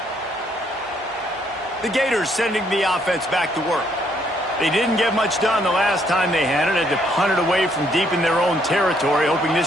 The Gators sending the offense back to work. They didn't get much done the last time they had it. Had to punt it away from deep in their own territory, hoping this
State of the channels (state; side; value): normal; both; correlation 0.69